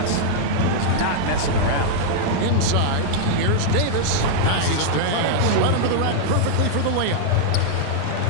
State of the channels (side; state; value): both; different; correlation -0.01